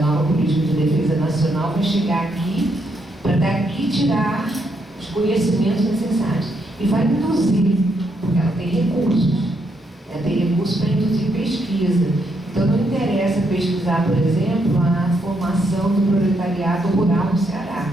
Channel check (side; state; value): both; normal; correlation 0.77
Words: política de defesa nacional vai chegar aqui para daqui tirar os conhecimentos necessários. E vai induzir, porque ela tem recursos. Ela tem recursos para induzir pesquisa. Então não interessa pesquisar, por exemplo, a formação do proletariado rural no Ceará.